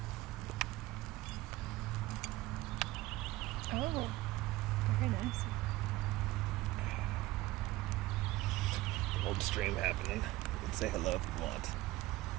Oh, very nice. Old stream happening. You can say hello if you want.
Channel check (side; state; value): left; quieter; 17.8 dB